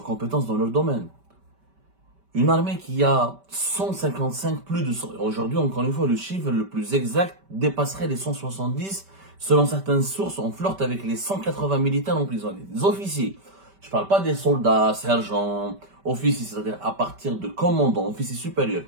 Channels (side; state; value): left; late; 5.1 ms